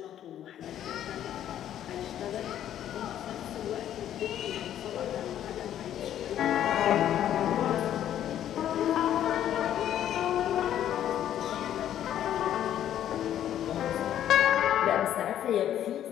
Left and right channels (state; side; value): quieter; right; 11.0 dB